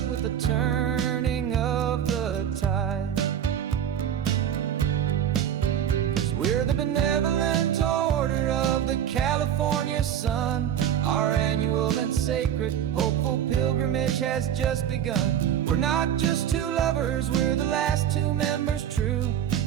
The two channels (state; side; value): quieter; left; 9.7 dB